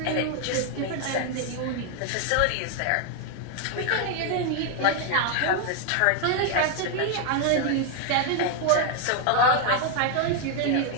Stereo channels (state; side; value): different; both; correlation 0.00